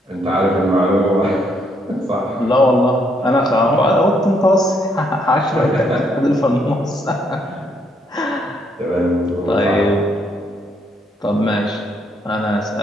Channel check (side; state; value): both; normal; correlation 0.72